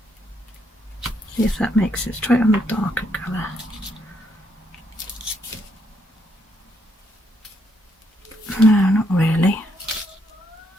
See if that makes it. Let's try it on the darker colour. No, not really.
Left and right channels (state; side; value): normal; both; correlation 0.74